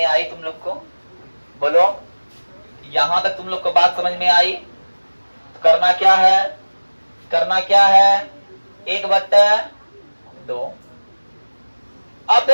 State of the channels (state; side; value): inverted; both; correlation -1.00